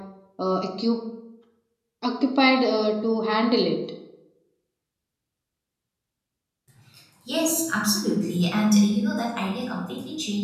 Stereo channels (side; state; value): both; identical; correlation 1.00